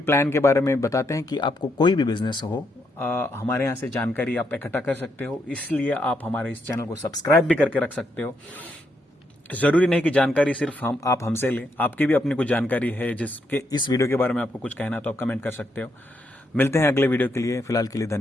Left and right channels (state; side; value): normal; both; correlation 0.78